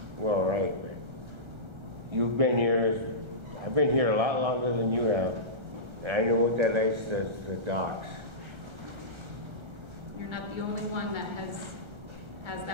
Well, right. You've been here, I've been here a lot longer than you have. And I know what that is, the docks. You're not the only one that has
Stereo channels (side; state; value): left; late; 1.3 ms